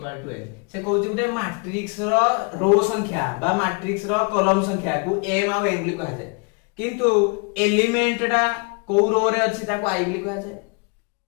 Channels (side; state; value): right; quieter; 33.6 dB